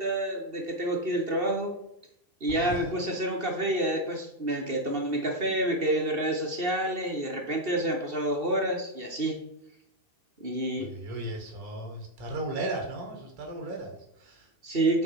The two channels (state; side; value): late; left; 2.7 ms